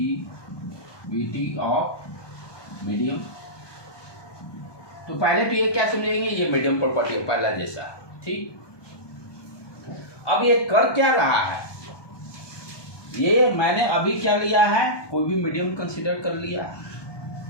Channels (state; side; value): late; right; 1.2 ms